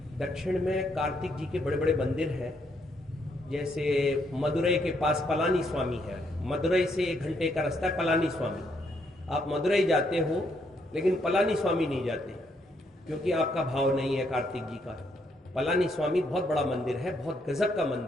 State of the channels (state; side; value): normal; both; correlation 0.74